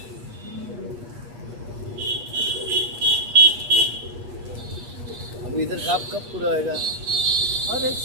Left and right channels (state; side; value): late; left; 8.3 ms